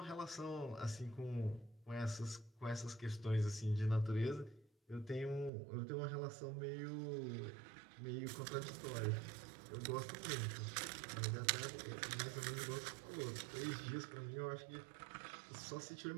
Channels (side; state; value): left; drops out; at 5.5 s